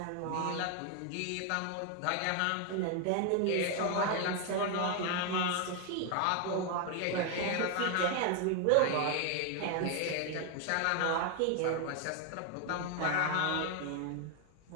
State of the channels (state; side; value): different; both; correlation 0.01